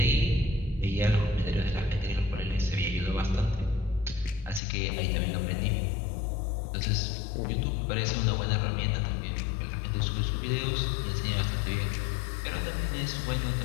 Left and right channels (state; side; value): drops out; right; at 4.6 s